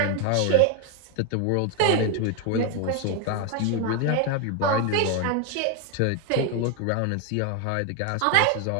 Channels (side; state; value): both; different; correlation 0.01